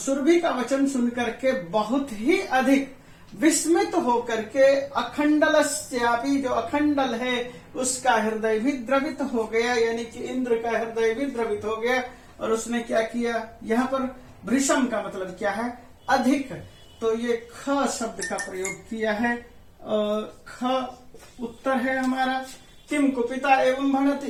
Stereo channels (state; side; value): identical; both; correlation 1.00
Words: का वचन सुन करके बहुत ही अधिक विस्मित होकर के, अखंडलस्यापि जो अखंडल है उसका हृदय भी द्रवित हो गया, यानी कि इंद्र का हृदय भी द्रवित हो गया। और उसने क्या किया, यहाँ पर भृशम का मतलब क्या है, अधिक, तो ये ख शब्द का प्रयोग किया है, ख उत्तर है हमारा। किम कुपिता एवं भनति,